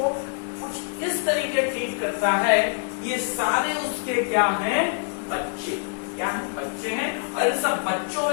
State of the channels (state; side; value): silent; right; 62 dB below the other